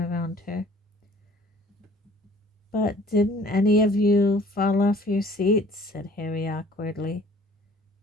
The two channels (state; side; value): normal; both; correlation 0.53